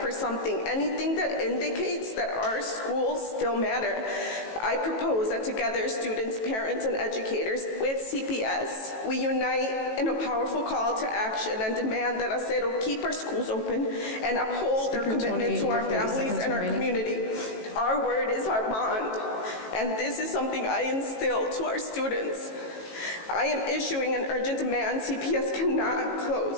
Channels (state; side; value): late; right; 18 ms